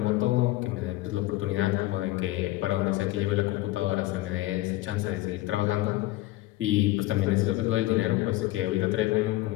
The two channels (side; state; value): right; quieter; 17.5 dB